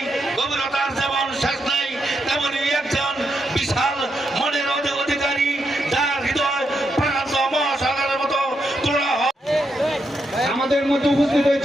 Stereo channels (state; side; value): normal; both; correlation 0.82